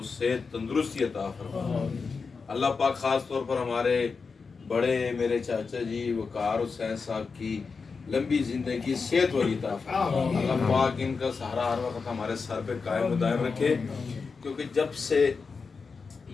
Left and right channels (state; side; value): quieter; right; 4.9 dB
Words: सेहत तंदुरुस्ती अता फरमा। अल्लाह पाक ख़ास तौर पर हमारे बड़े मेरे चाचा जी वकार हुसैन साहब की लंबी ज़िंदगी सेहत वाली अता फरमा। अल्लाह पाक इनका सहारा हर वक्त हमारे सर पे कायम दायम रखे। क्योंकि जब से